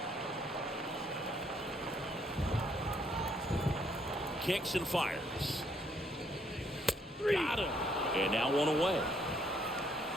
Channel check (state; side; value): normal; both; correlation 0.69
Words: Kicks and fires. Got him. And now one away.